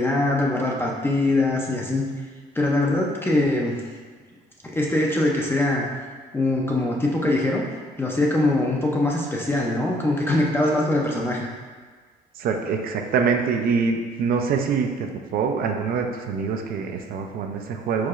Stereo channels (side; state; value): both; normal; correlation 0.64